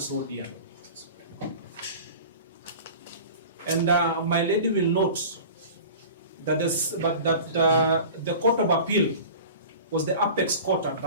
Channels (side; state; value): both; inverted; correlation -0.38